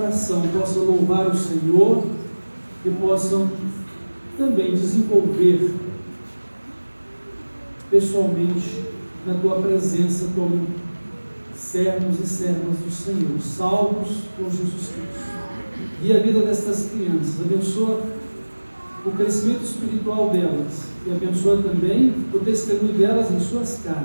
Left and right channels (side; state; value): both; inverted; correlation -1.00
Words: possam louvar o Senhor e possam também desenvolver pessoalmente na Tua presença como servos e servas do Senhor, salvos por Jesus Cristo. E a vida destas crianças, abençoa o crescimento espiritual delas e abençoa também o testemunho delas em suas